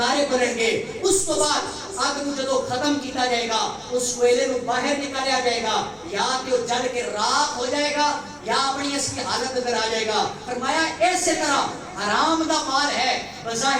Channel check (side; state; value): both; identical; correlation 1.00